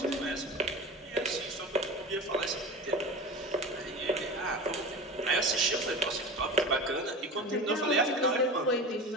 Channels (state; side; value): normal; both; correlation 0.31